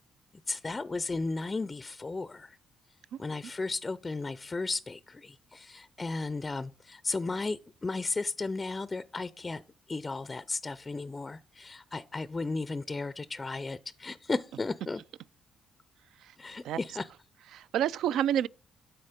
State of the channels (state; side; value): normal; both; correlation 0.82